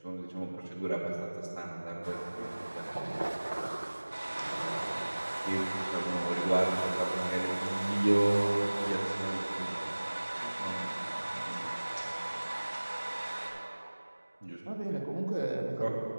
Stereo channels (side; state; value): both; inverted; correlation -1.00